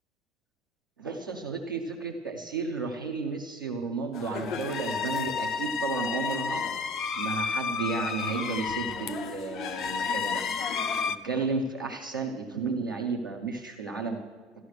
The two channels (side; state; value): both; normal; correlation 0.39